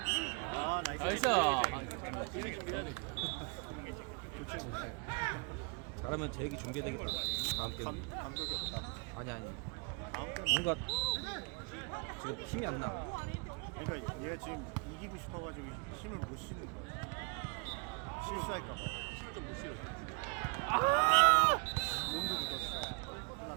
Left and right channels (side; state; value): left; quieter; 34.9 dB